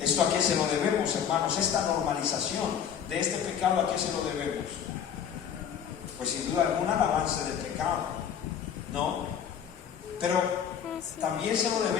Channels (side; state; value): right; quieter; 8.4 dB